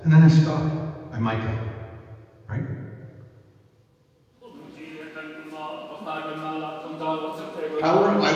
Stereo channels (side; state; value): both; identical; correlation 1.00